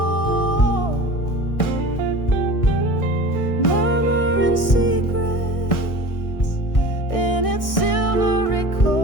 murmuring secrets in its silvery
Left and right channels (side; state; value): right; late; 1.6 ms